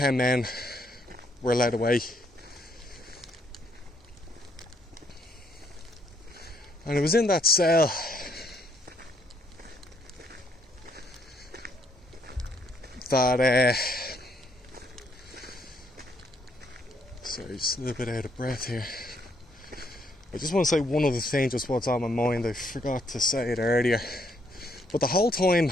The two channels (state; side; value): normal; both; correlation 0.71